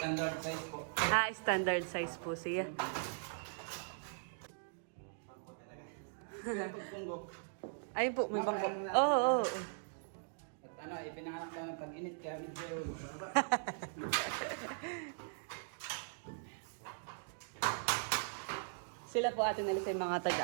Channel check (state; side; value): silent; left; digital silence